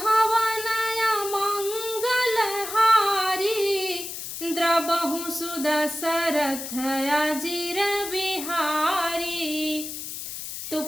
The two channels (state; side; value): noise; left; hiss, 8 dB below the sound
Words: मंगल हारी, द्रबहु सुदशरथ अजीर बिहारी। तो